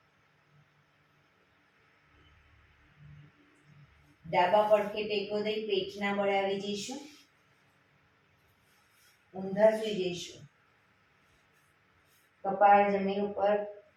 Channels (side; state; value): both; identical; correlation 1.00